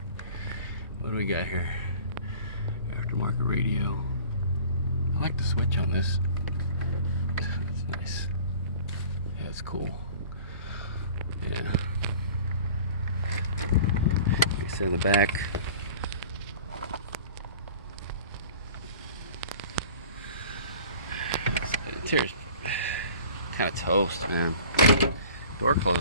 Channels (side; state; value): both; inverted; correlation -0.45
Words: What do we got here? Aftermarket radio. I like the switch on this. It's nice. Yeah, it's cool. Yeah. Like I said, the back. Interior's kind of toast, man. Door